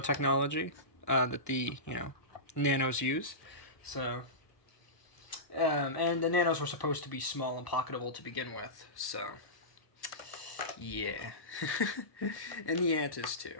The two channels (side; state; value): right; late; 1.0 ms